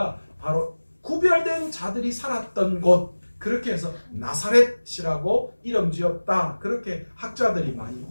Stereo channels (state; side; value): inverted; both; correlation -1.00